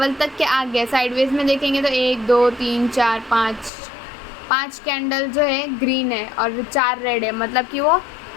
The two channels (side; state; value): right; drops out; at 3.7 s